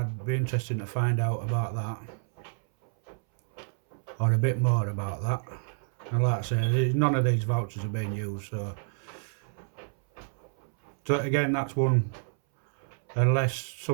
be interested to find out about that, or a bit more about that. And like I say, none of these vouchers are being used, so again, that's one, unless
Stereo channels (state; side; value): silent; left; 59 dB below the other